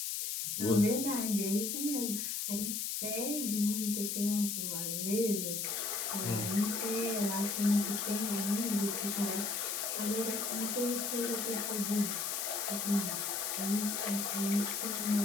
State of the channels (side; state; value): left; noise; hiss, 1 dB below the sound